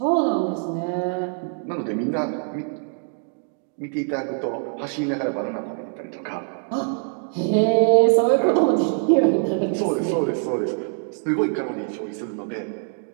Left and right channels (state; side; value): silent; left; 61 dB below the other